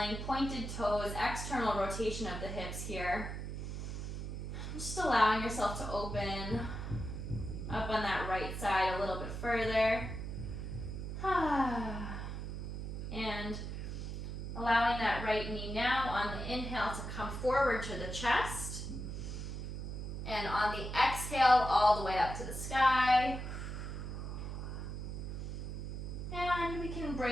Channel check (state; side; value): noise; right; hum, 5 dB below the sound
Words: pointed toes, external rotation of the hips here. Just allowing yourself to open up on that right side a little bit further. And allowing that right knee now on the inhale to come forward to the chest. And on the exhale, all the way up to the sky. And we can